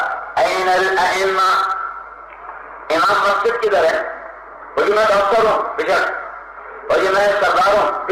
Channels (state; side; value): identical; both; correlation 1.00